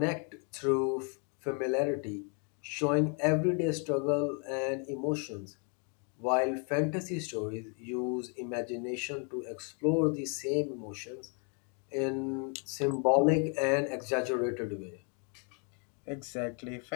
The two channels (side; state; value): right; quieter; 38.8 dB